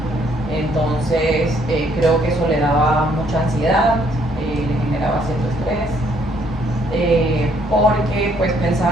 Entonces, creo que eso le daba mucha ansiedad, le generaba cierto estrés, porque pues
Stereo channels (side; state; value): both; normal; correlation 0.67